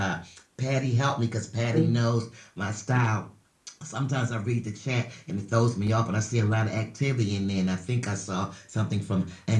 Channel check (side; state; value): both; identical; correlation 1.00